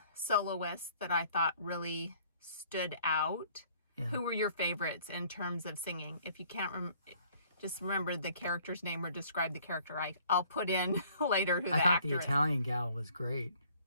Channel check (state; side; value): inverted; both; correlation -0.57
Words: soloists that I thought really stood out. Yeah. Who were your favorites in terms of singing? If you can't just remember the character's name or describe the character, I'll put in later who the actor is. I thought the Italian gal was great.